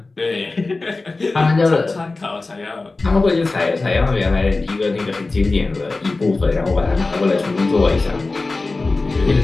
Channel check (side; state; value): right; quieter; 3.5 dB